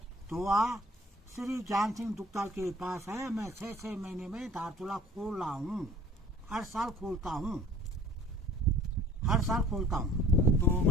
दुआ श्री ज्ञान सिंह दुग्ताल के पास है। मैं 6 महीने में धारचूला खोल रहा हूँ, हर साल खोलता हूँ। तो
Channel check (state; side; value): normal; both; correlation 0.49